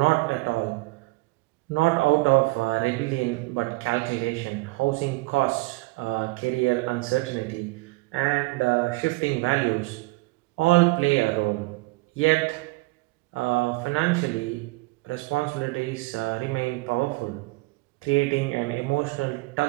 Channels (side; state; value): left; quieter; 23.4 dB